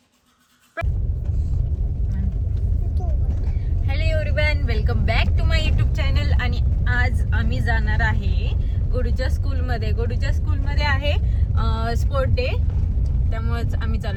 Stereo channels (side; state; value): both; identical; correlation 1.00